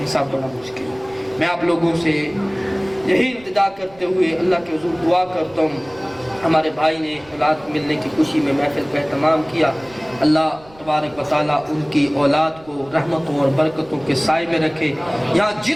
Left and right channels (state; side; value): noise; right; rumble, 25 dB below the sound